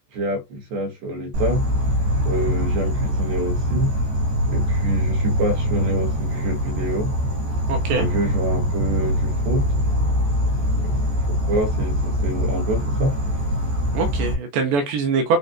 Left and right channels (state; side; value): late; left; 14 ms